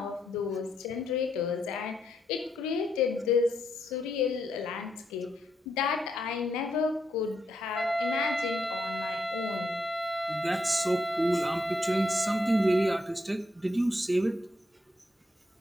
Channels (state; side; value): normal; both; correlation 0.79